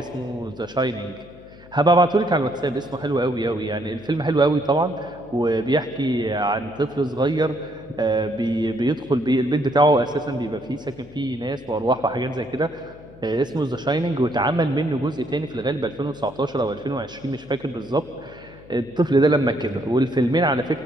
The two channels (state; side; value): noise; left; hum, 22 dB below the sound